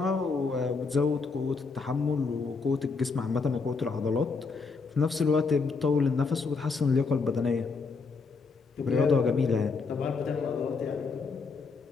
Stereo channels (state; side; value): quieter; right; 4.5 dB